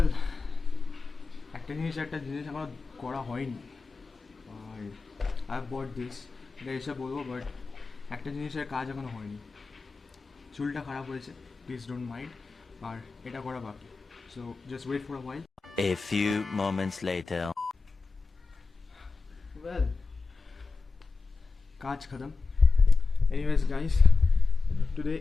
একটা জিনিস আমার করা হয়নি আর আই বট দিস, এটা এসে বলবো, বাট একটা জিনিসের কাজ এখনো হয়নি. চুলটা খারাপ হয়েছে, প্লিজ ডোন্ট মাইন্ড, আর এটা করা বাকি. So just wait for a while. A few moments later. Well, কাজ খতম. Anyways guys, today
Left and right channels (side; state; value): right; quieter; 4.2 dB